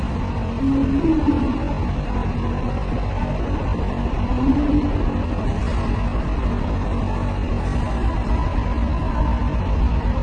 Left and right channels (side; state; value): both; identical; correlation 1.00